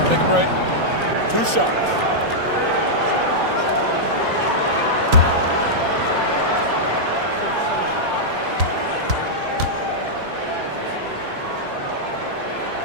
Take a break. 2 shots.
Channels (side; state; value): left; late; 3.9 ms